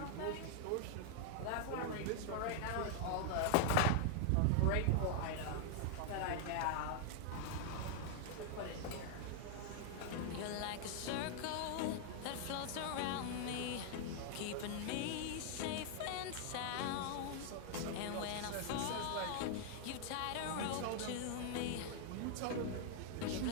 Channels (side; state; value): both; different; correlation 0.00